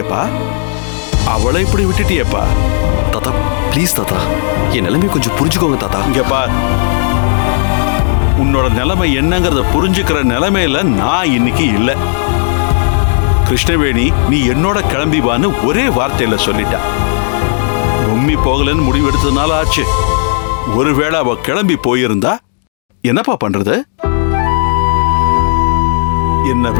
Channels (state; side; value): silent; right; 72 dB below the other